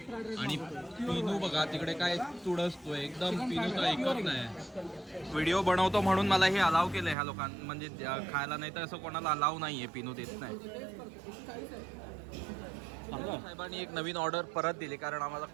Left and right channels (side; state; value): left; drops out; at 7.2 s